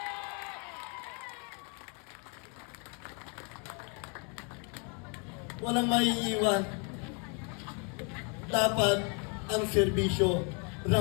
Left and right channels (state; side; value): quieter; right; 36.5 dB